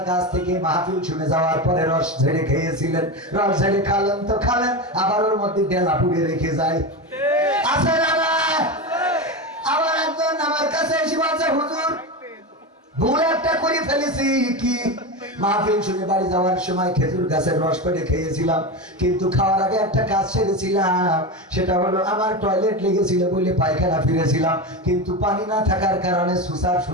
কাছ থেকে মাহফিল শুনে যাওয়ার পরে রস ঝেড়ে খেয়েছিলেন, রস ঝেড়ে খালেন তো খালেন, আবার ওর মধ্যে ডেলা পুড়ে রেখে যায়। আছে না? আবার একজন আমার কাছে এসে বলছে হুজুর ভুল একটা করে ফেলেছি। কি? মাহফিল শুনে বাড়ি যাওয়ার সময় খেজুর গাছের রস পেড়ে খেয়েছিলাম, কিন্তু খাওয়ার আগে একটা কাজ সেরেছিলাম, সেটা হলো আমার টয়লেট লেগেছিল বলে পায়খানা ফিরেছিলাম, কিন্তু পানি না থাকার কারণে সুসার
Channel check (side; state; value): both; normal; correlation 0.19